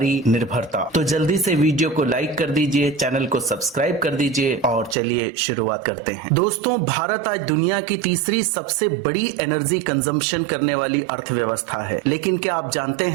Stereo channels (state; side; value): drops out; left; at 5.0 s